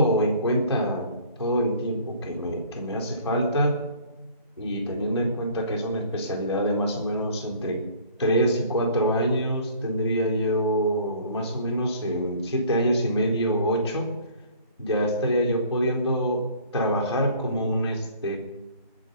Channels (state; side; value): inverted; both; correlation -0.52